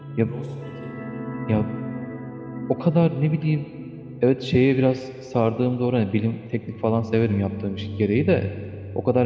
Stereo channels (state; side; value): identical; both; correlation 1.00